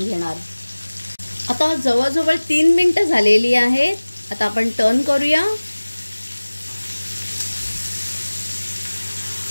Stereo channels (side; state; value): both; inverted; correlation -1.00